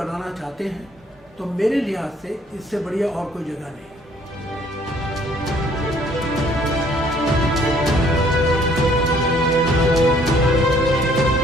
चाहते हैं तो मेरे लिहाज से इससे बढ़िया और कोई जगह नहीं।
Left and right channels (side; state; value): both; normal; correlation 0.60